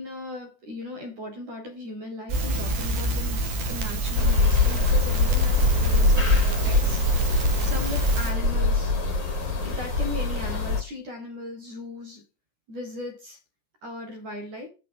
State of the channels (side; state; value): left; late; 11 ms